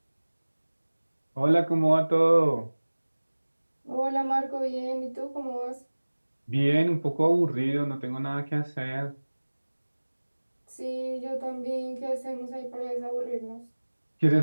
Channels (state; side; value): inverted; both; correlation -1.00